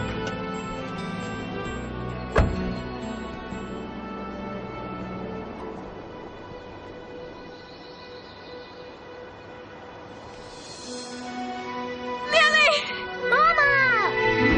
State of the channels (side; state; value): both; identical; correlation 1.00